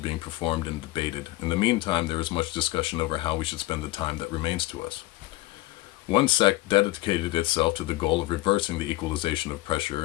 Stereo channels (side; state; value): right; quieter; 18.2 dB